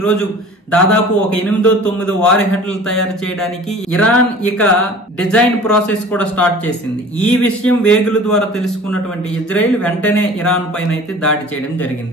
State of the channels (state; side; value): normal; both; correlation 0.44